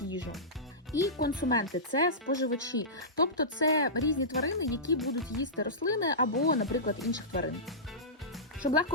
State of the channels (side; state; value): both; normal; correlation -0.18